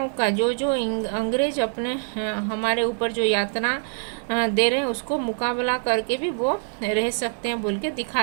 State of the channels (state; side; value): silent; left; digital silence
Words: का जो जो अंग्रेज अपने हमारे ऊपर जो यातना दे रहे हैं उसको मुकाबला करके भी वो रह सकते हैं बोल के